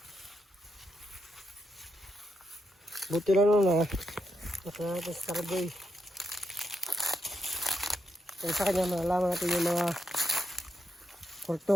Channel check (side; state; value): both; normal; correlation 0.82